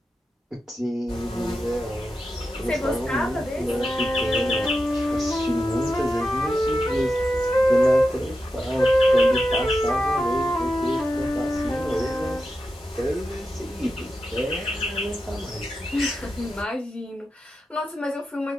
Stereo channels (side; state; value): both; normal; correlation 0.89